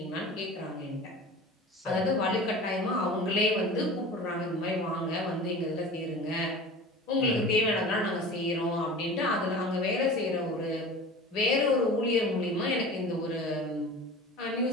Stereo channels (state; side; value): normal; both; correlation 0.36